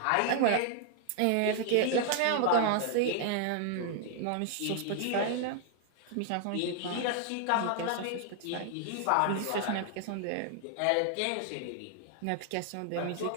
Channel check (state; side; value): different; both; correlation 0.00